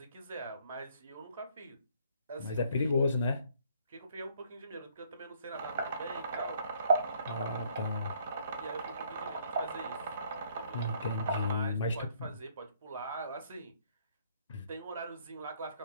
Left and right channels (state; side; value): inverted; both; correlation -0.64